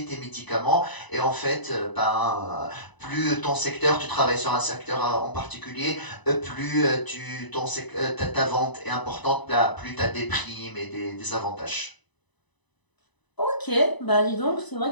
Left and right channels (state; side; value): late; right; 1.0 ms